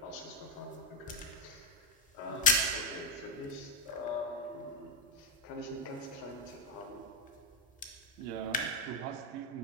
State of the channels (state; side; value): normal; both; correlation 0.03